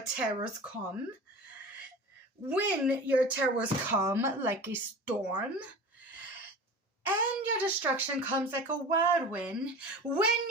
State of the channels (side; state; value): both; normal; correlation 0.35